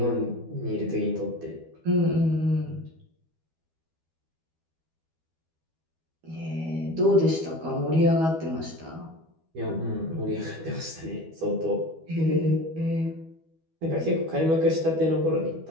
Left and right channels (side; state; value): left; late; 12 ms